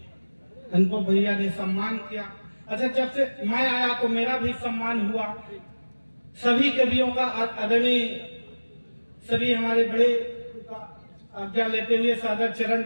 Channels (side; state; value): both; inverted; correlation -1.00